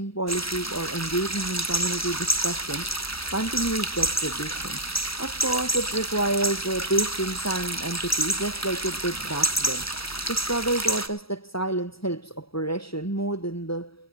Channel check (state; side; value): late; right; 0.76 ms